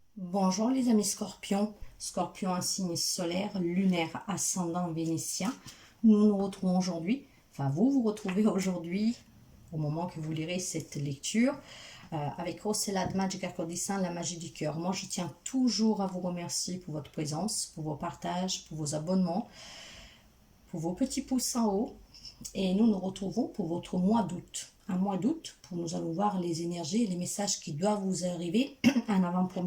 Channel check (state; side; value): identical; both; correlation 1.00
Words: Bonjour les amis scorpions, scorpion un signe solaire, lunaire, ascendant vénitien. Nous nous retrouvons aujourd'hui, enfin vous vous retrouvez aujourd'hui, au moment que vous lirez cette lecture, avec Rossella de Magica Codissin, la magie du cœur. Moi je tiens toujours à vous remercier pour votre présence, pour vos partages, pour vos abonnements, pour vos petits pouces en haut. Et nous nous retrouvons pour votre mois d'août. Un mois d'août, pour nous allons voir les énergies et les messages qui doivent vous arriver en